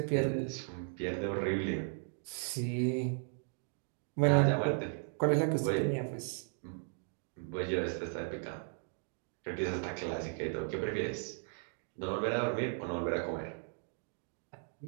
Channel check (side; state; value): left; silent; 54 dB below the other